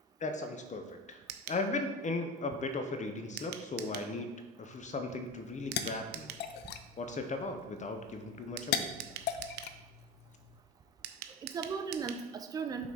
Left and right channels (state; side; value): normal; both; correlation 0.28